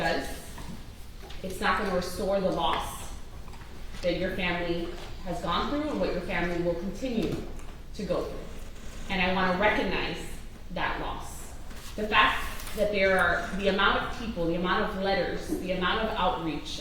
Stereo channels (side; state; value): both; identical; correlation 1.00